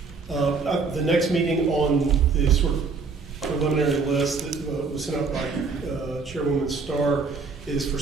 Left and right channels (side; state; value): left; quieter; 4.6 dB